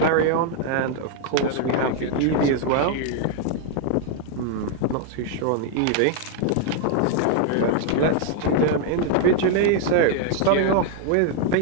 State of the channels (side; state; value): both; different; correlation 0.00